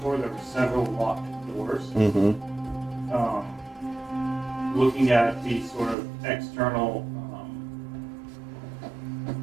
there were several locked doors. Mm-hmm. Looking at the sort of external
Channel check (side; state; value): left; drops out; at 6.0 s